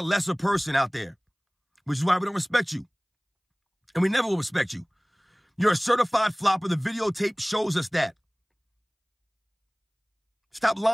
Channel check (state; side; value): identical; both; correlation 1.00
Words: lesser person out there. Which is why we don't respect you. And we never will respect you. You're a certified flopper. The videotape shows us that. Stop